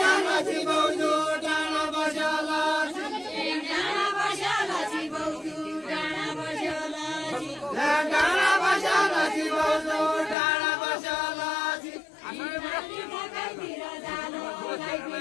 नची बौजू डाँडा बस्यो नची डाँडा बस्यो नची बौजू डाँडा बस्यो नची डाँडा बस्यो नची बौजू डाँडा बस्यो नची लाइतिर जालो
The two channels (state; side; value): drops out; right; at 10.4 s